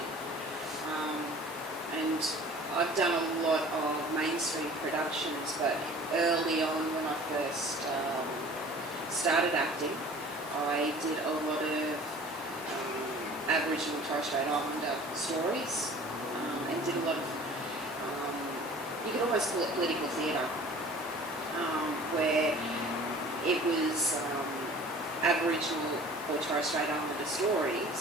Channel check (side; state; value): both; normal; correlation 0.46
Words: And I've done a lot of mainstream productions, but early on when I first started acting, I did a lot of Aboriginal Torres Strait Islander stories, and did a lot of, you could almost call it political theatre, where it was Aboriginal or Torres Strait Islander